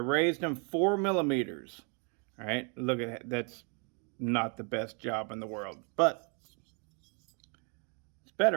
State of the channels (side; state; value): left; quieter; 36.4 dB